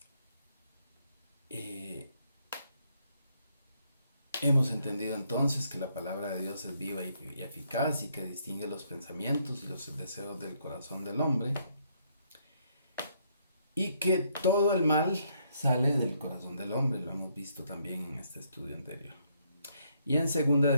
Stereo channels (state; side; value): inverted; both; correlation -0.72